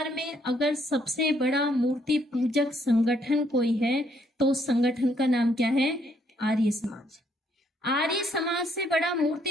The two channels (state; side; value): normal; both; correlation 0.70